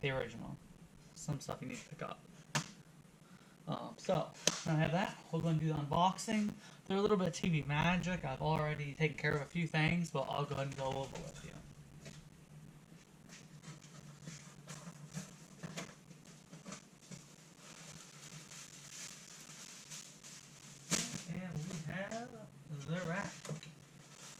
the original. Some stuff you need to pick up. So, now I have that. We're going to do the unboxing. There's a little bit of TV magic. I've already taken care of a few things, but I'll go ahead and go over with you. And we have the rack.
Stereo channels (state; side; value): identical; both; correlation 1.00